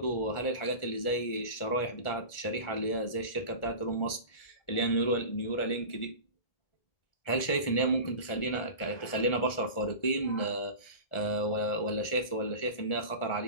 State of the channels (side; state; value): right; late; 1.4 ms